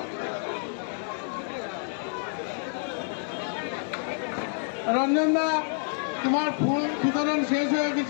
রঞ্জন দা তোমার ফুল বিতরণ শেষ হয়ে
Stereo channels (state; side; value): silent; right; 59 dB below the other